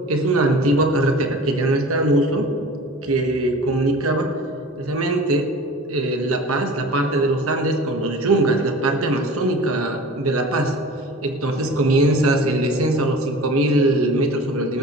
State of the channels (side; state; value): both; normal; correlation 0.40